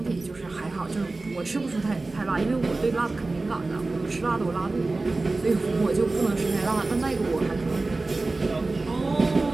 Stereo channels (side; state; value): left; quieter; 3.3 dB